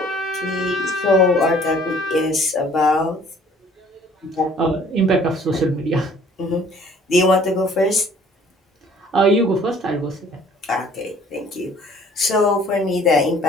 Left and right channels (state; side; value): normal; both; correlation 0.55